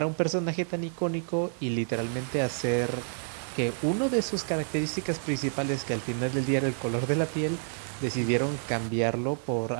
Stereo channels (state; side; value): silent; left; 59 dB below the other